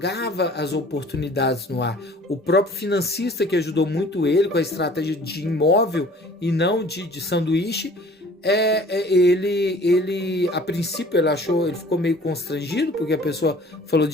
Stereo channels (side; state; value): both; normal; correlation 0.50